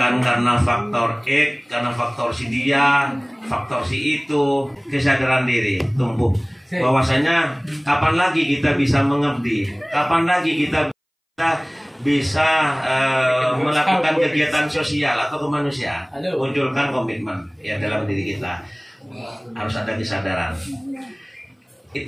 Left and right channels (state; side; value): identical; both; correlation 1.00